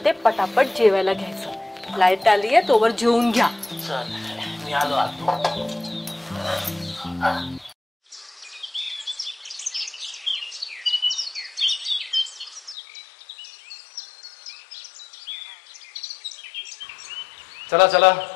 पटापट जेवायला घ्यायचं. लाईट आली आहे, तोवर जेवून घ्या. चल मी आलो आतो. चला चला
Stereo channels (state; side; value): drops out; right; at 12.8 s